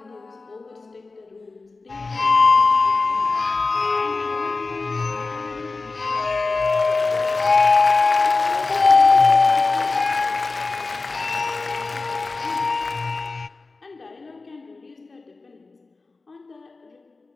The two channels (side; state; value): right; quieter; 3.8 dB